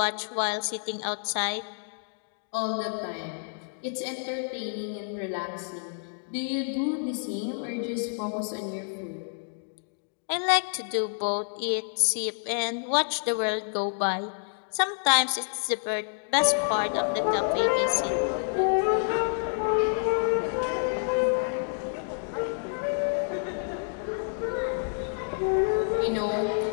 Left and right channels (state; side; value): silent; right; digital silence